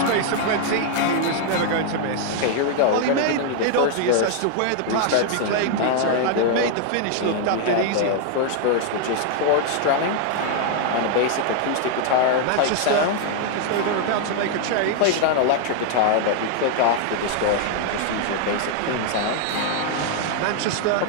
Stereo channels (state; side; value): different; both; correlation 0.00